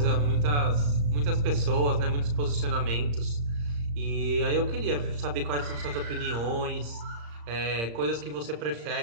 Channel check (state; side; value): late; left; 35 ms